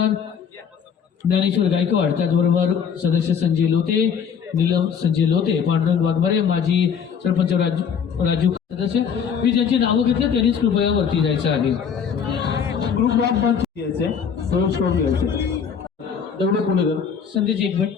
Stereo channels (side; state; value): right; quieter; 7.1 dB